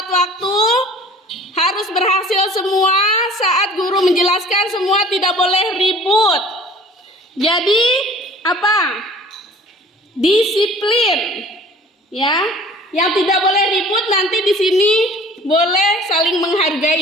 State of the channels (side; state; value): both; normal; correlation 0.48